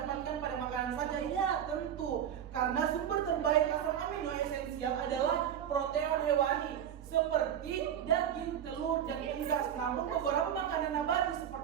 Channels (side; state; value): left; quieter; 9.5 dB